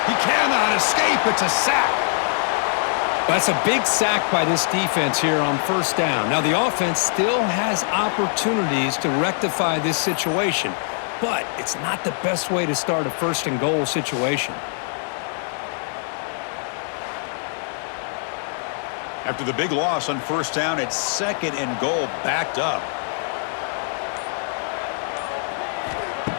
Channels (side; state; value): right; silent; 63 dB below the other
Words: He cannot escape. It's a sack. That's a big sack by this defense here on first down. Now, the offense still has opportunities to rectify this situation, but it's not the best way to start a first and goal situation. After the big loss on first down, it's second and goal, backed up.